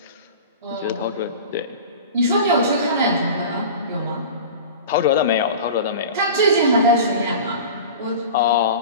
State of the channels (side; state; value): both; inverted; correlation -0.35